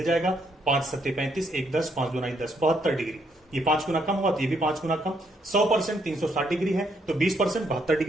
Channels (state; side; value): normal; both; correlation 0.73